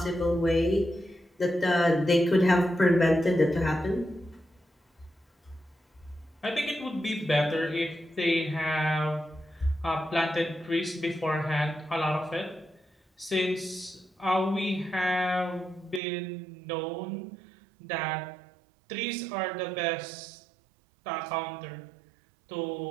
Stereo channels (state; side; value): drops out; left; at 16.0 s